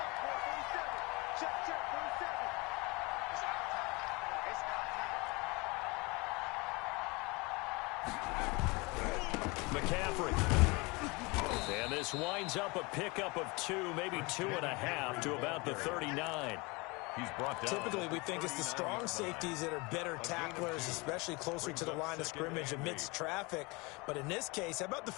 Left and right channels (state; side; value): quieter; right; 26.4 dB